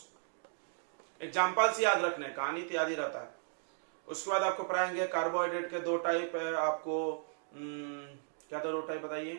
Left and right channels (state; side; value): silent; left; digital silence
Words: एग्जांपल्स याद रखने, कहानी तो याद ही रहता है। उसके बाद आपको पढ़ाएंगे कार्बोहाइड्रेट के 2 टाइप है आपको, क्या था 2 टाइप